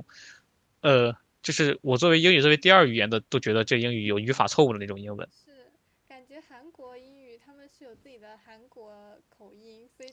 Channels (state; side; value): identical; both; correlation 1.00